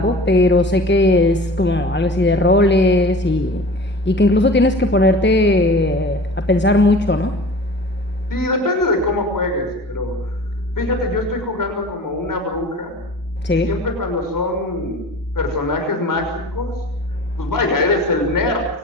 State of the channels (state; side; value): normal; both; correlation 0.41